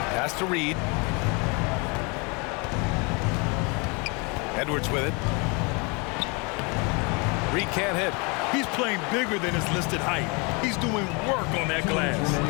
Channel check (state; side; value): quieter; right; 30.6 dB